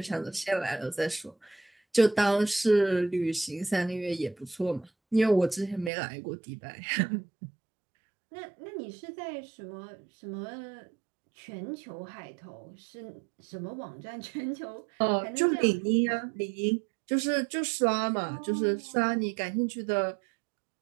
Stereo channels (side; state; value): left; drops out; at 5.9 s